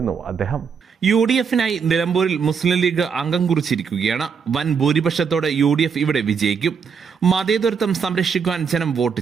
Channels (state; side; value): quieter; left; 6.2 dB